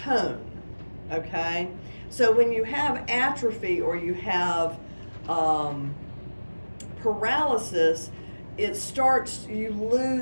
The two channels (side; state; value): both; inverted; correlation -1.00